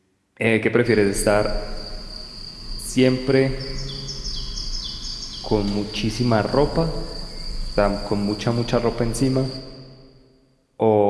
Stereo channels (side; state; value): both; identical; correlation 1.00